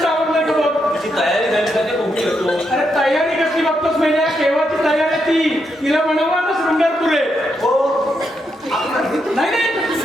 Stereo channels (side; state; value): both; normal; correlation 0.81